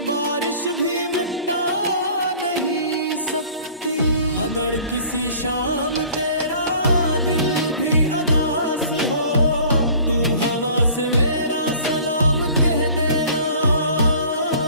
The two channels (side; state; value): both; inverted; correlation -0.48